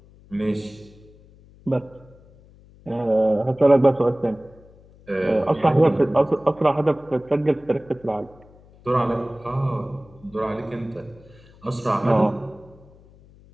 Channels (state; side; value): noise; left; hum, 25 dB below the sound